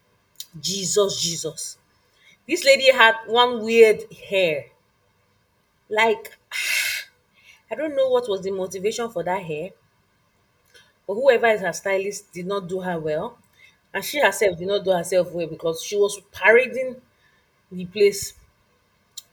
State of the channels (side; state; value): both; identical; correlation 1.00